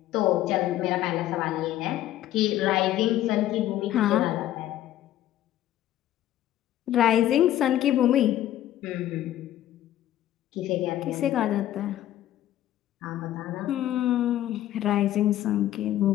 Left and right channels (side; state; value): right; quieter; 13.0 dB